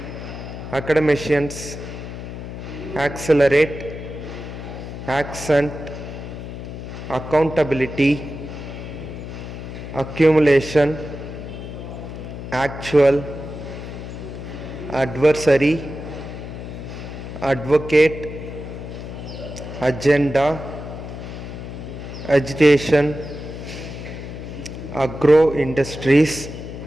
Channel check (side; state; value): left; noise; hum, 9 dB below the sound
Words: academicians, accelerate, accent, accountability, accumulation, actual, adversary, advocate, agenda, agitation, agro industries,